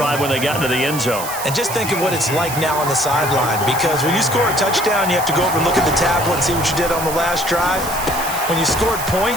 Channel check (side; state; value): right; noise; hiss, 8 dB below the sound